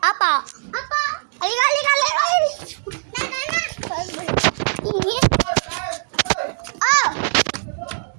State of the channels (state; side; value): silent; left; digital silence